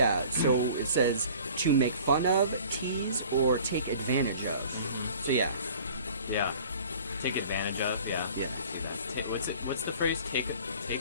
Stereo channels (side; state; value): both; inverted; correlation -0.46